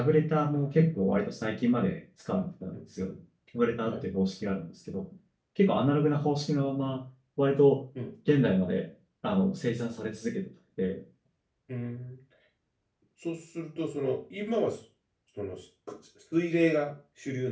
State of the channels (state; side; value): identical; both; correlation 1.00